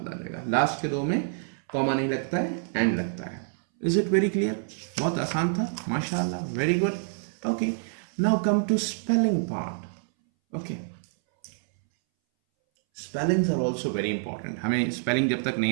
आ जाएगा। लास्ट के 2 में कॉमा नहीं लगता है, एंड लगता है। Is it very clear? बहुत आसान था, माशाल्लाह, very good. Okay, now come to spelling part. Okay, spellings are also very important. हमें स्पेलिंग जब तक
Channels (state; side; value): silent; left; 60 dB below the other